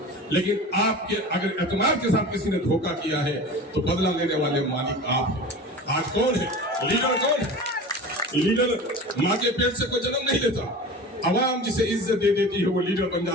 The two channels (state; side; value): normal; both; correlation 0.35